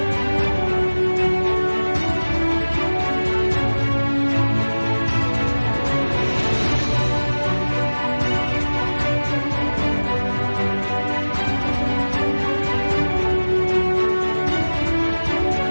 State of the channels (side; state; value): both; inverted; correlation -1.00